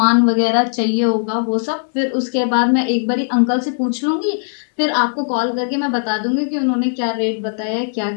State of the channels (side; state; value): right; silent; digital silence